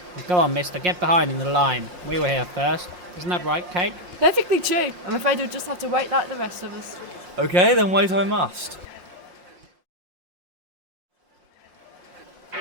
Go on, mister, get behind in the line. We were here first. Isn't that right, Kate? Perfectly true. I'm afraid we'll just have to wait like the rest of us. Okay, then wait I must.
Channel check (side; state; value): left; late; 5.6 ms